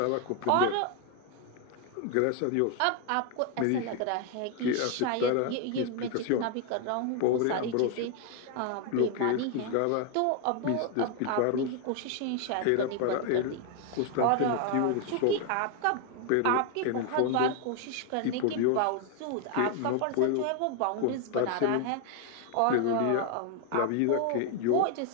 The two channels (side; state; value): both; different; correlation 0.01